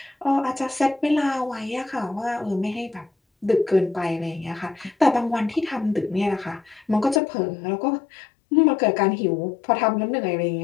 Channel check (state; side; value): drops out; right; at 7.2 s